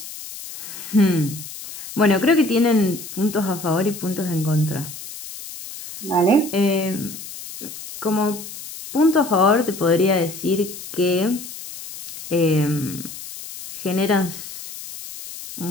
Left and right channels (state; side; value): noise; left; hiss, 12 dB below the sound